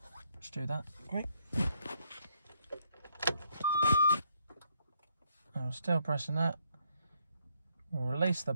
Let's do that. Great. I'm still pressing that. We'll release the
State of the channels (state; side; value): inverted; both; correlation -0.72